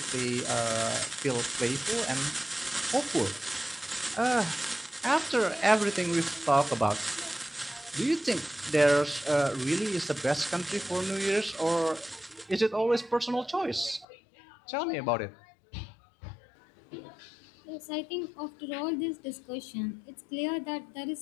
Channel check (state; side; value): drops out; right; at 14.1 s